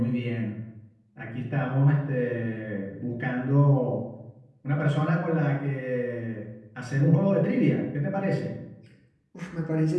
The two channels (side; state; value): both; identical; correlation 1.00